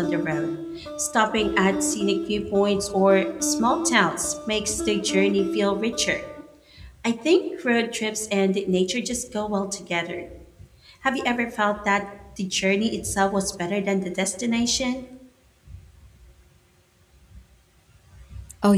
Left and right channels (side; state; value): both; identical; correlation 1.00